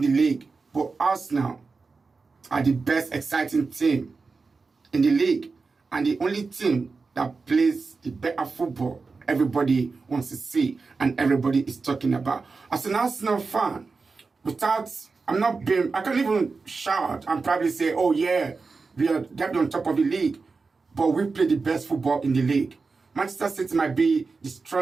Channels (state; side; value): quieter; left; 4.3 dB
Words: the league, but Arsenal are the best exciting team in the league, and the only team that plays the better football everybody wants to see and everybody is talking about. As an Arsenal fan, I can't even shout and probably say, oh yeah, we are definitely on top of the league, but we play the best football in the league. Manchester City might be the